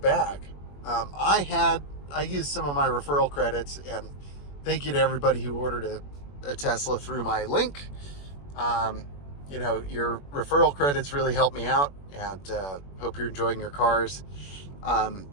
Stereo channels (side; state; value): right; late; 21 ms